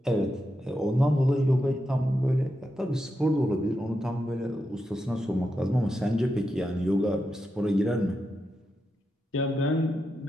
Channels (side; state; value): both; normal; correlation 0.87